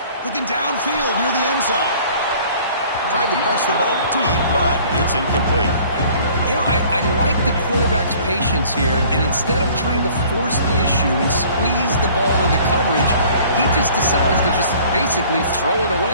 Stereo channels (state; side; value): inverted; both; correlation -0.52